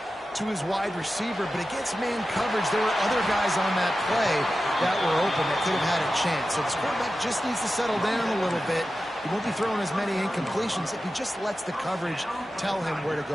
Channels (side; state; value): both; normal; correlation 0.93